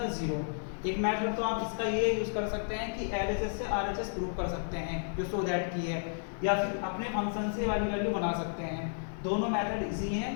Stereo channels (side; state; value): right; silent; digital silence